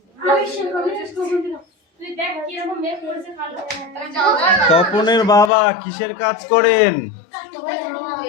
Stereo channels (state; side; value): drops out; right; at 5.5 s